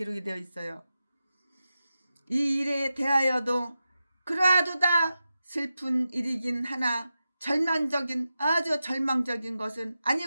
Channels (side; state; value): both; inverted; correlation -0.91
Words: 되어 있어요. 이 일에 대하여도 그러하도다 슬픈 일이긴 하나 아주 절망적인 것은